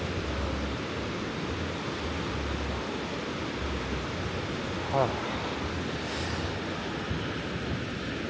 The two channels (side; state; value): both; identical; correlation 1.00